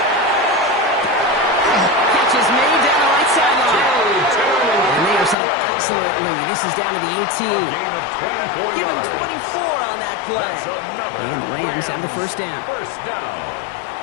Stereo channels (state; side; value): drops out; right; at 5.4 s